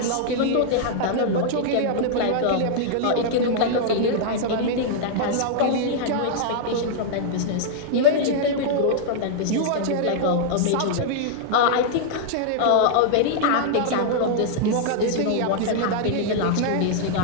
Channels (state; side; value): different; both; correlation -0.01